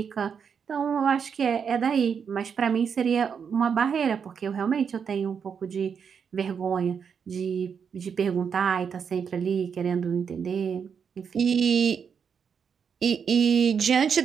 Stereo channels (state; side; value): quieter; left; 6.8 dB